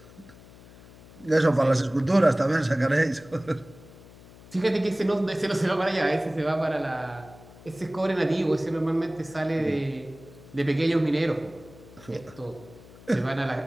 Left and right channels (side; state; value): left; noise; hum, 21 dB below the sound